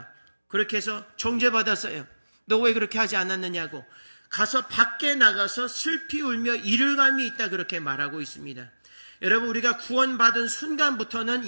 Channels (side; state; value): both; inverted; correlation -1.00